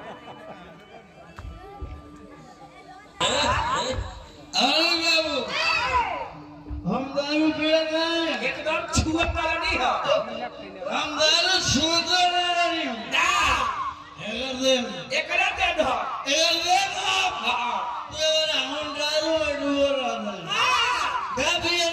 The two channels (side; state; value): both; identical; correlation 1.00